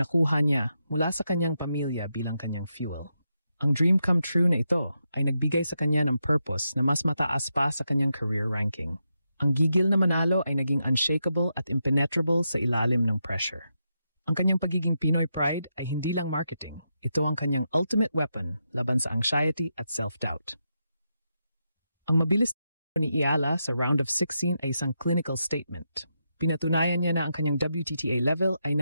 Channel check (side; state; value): both; inverted; correlation -0.85